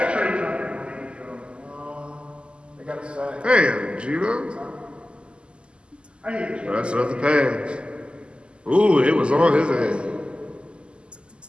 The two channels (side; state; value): left; late; 0.052 ms